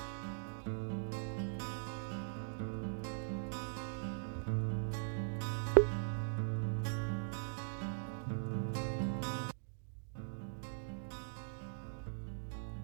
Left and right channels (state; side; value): silent; left; digital silence